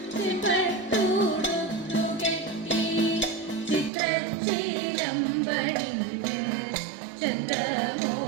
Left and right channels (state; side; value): drops out; left; at 3.9 s